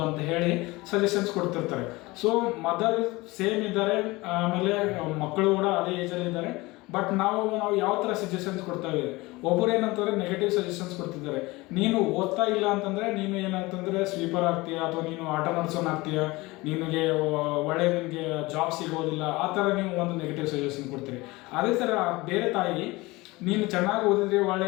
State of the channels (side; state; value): right; quieter; 21.8 dB